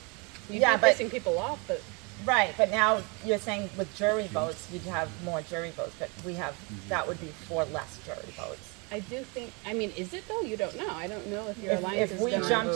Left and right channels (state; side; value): quieter; left; 30.7 dB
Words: You'd be Yeah, but- pissing people off, but Right, but now you're saying with jury votes, you'd have more jury votes, but that would be 4 less jury votes. I do think. I mean, is it though? You don't know. I don't know if your alliance If is we gonna. jump